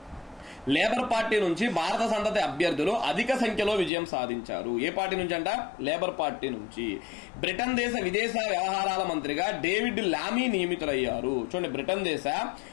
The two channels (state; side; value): drops out; right; at 3.9 s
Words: లేబర్ పార్టీ నుంచి భారత సంతతి అభ్యర్థులు అధిక సంఖ్యలో విజయం సాధించారు. ఏ పార్టీ నుంచి అంట? లేబర్ పార్టీ నుంచి. బ్రిటన్ దేశ విదేశీ వ్యవహారాల మంత్రిగా డేవిడ్ లామీ నియమితులయ్యారు. చూడండి, బ్రిటన్ దేశ